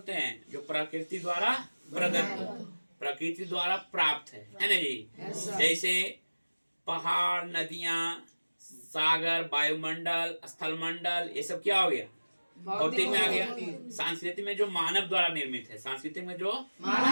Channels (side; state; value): both; inverted; correlation -1.00